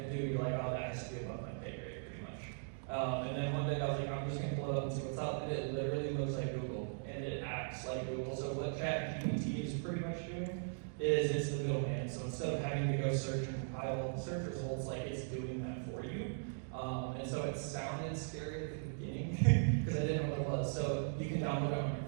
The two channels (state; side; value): silent; left; digital silence